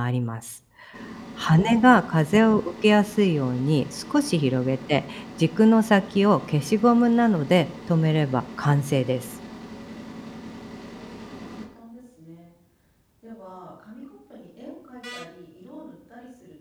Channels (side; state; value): both; identical; correlation 1.00